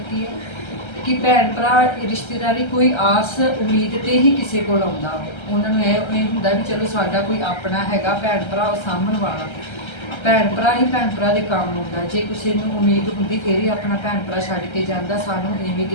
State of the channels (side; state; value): right; late; 1.3 ms